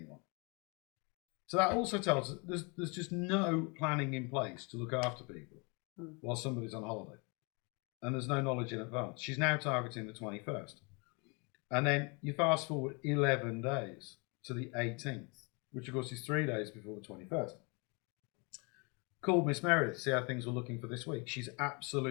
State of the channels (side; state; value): right; quieter; 31.3 dB